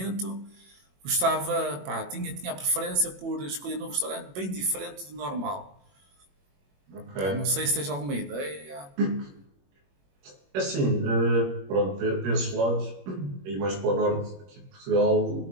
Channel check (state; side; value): late; left; 21 ms